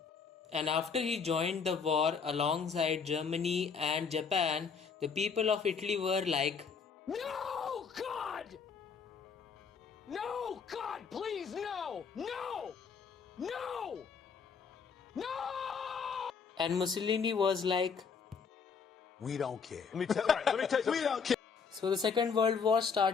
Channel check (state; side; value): quieter; right; 5.9 dB